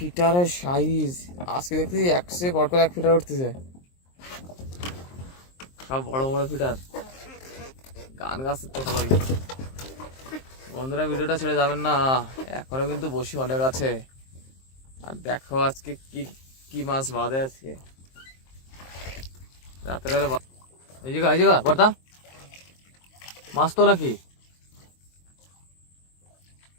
সাইজ আজকে দেখতেছি একশে পর করে এক ফিটার উঠতেছে, সব বড় বড় ফিটার। গান গাছ তো ভালোই বন্ধুরা, ভিডিওটা ছেড়ে যাবেন না, এখনো কিন্তু বসি অনেক আছে। আর দেখো আজকে কি কি মাছ বাঁধে আজকে রাতের বেলা। এই জায়গা বর্দা মাছ তো নাকি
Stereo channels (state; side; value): late; right; 23 ms